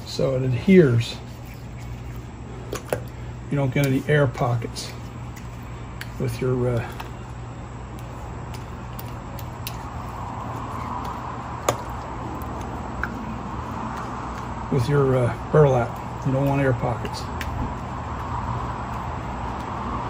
so it adheres. You don't get any air pockets with your burlap. You don't want air pockets.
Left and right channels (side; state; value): both; identical; correlation 1.00